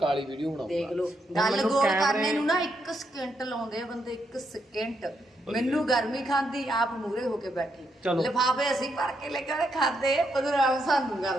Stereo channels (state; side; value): normal; both; correlation 0.79